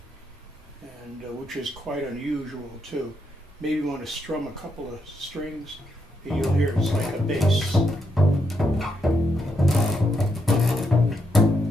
and which is quite unusual too. Maybe you want to strum a couple of strings, and you'll hear it's like a bass.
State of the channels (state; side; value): normal; both; correlation 0.80